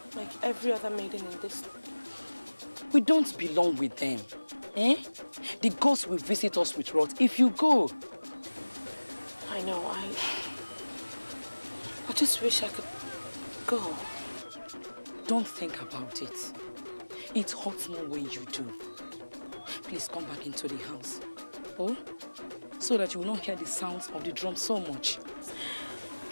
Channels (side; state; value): both; inverted; correlation -1.00